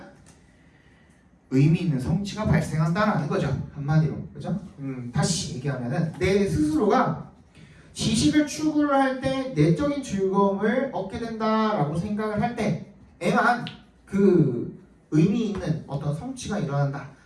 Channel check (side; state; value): both; identical; correlation 1.00